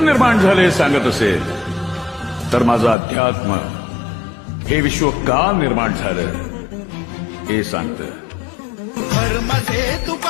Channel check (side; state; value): right; drops out; at 3.0 s